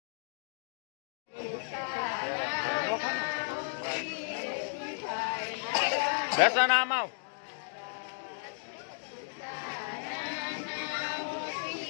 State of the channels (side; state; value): right; silent; digital silence